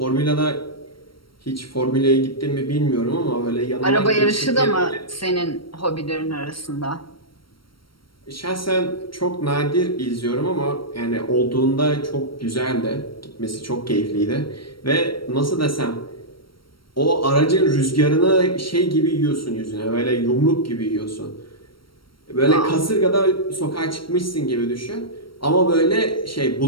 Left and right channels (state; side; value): late; right; 0.74 ms